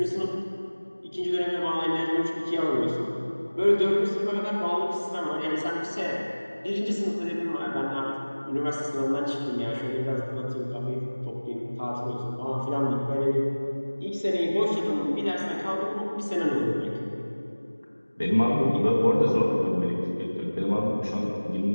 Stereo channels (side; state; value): both; inverted; correlation -1.00